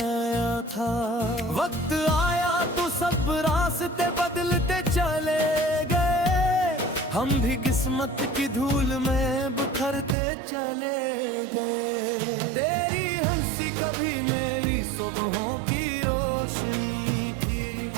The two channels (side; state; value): left; drops out; at 10.2 s